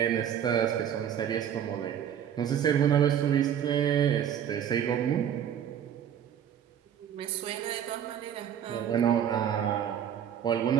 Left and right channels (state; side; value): quieter; left; 9.3 dB